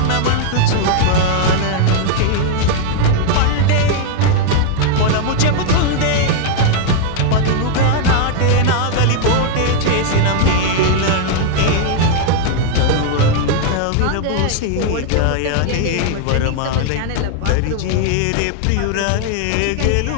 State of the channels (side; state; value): both; different; correlation 0.00